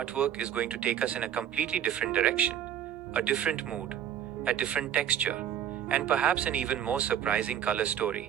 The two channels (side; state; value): left; quieter; 10.0 dB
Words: is going to take us in a completely different direction. A different mood, a different texture, and perhaps an even more surprising color